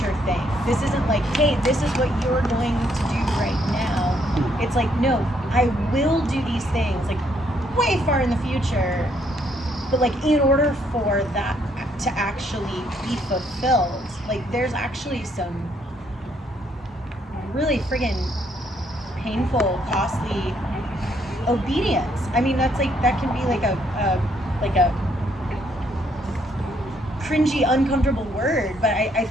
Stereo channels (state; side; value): normal; both; correlation 0.70